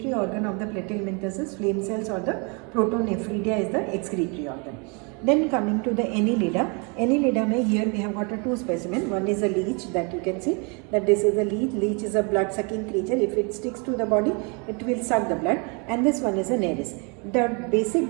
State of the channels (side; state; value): left; quieter; 33.5 dB